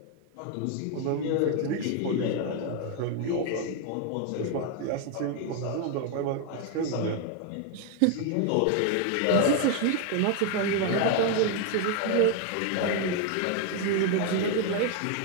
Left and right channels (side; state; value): both; different; correlation 0.01